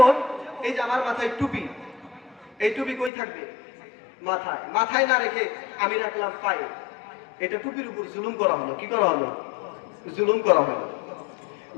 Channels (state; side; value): drops out; right; at 3.1 s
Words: এই যে আমার মাথায় টুপি, এই টুপি কই থাকবে? মাথায়। মাথায় না রেখে আমি রাখলাম পায়ে, এটা টুপির উপর জুলুম করা হলো। কি করা হলো? জুলুম করা হলো।